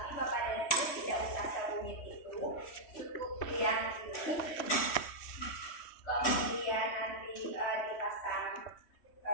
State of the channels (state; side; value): late; right; 3.1 ms